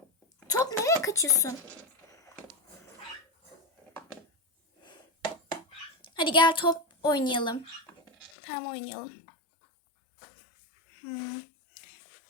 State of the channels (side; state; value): right; drops out; at 8.3 s